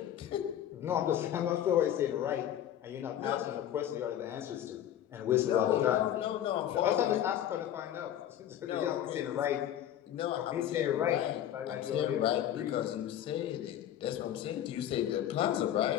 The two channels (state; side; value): quieter; right; 11.0 dB